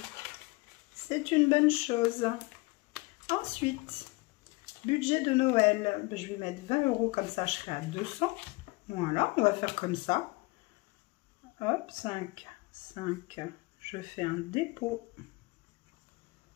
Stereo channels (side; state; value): right; quieter; 24.7 dB